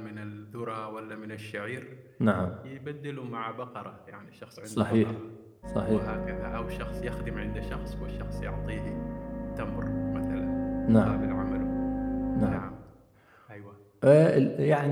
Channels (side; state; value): both; identical; correlation 1.00